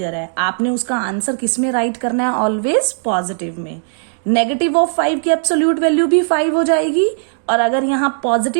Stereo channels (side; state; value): left; silent; digital silence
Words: है, आपने उसका आंसर किस में राइट करना है, ऑलवेज पॉजिटिव में. नेगेटिव ऑफ 5 की एब्सोल्यूट वैल्यू भी 5 हो जाएगी, और अगर यहाँ